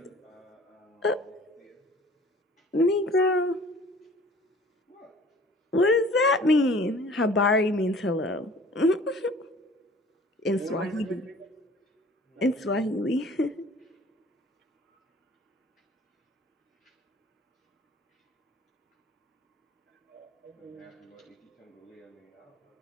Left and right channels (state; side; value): normal; both; correlation 0.49